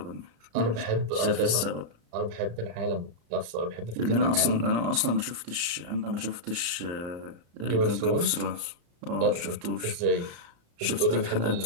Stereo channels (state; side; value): late; left; 34 ms